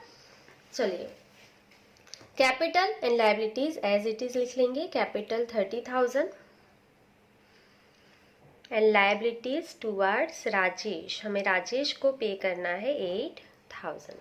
चलिए, capital and liabilities as it is लिख लेंगे। Capital 30,000 and liabilities towards Rajesh, हमें राजेश को पे करना है 8,000।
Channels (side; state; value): both; identical; correlation 1.00